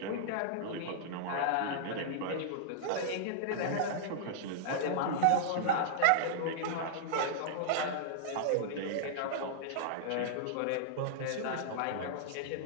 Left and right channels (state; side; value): different; both; correlation -0.02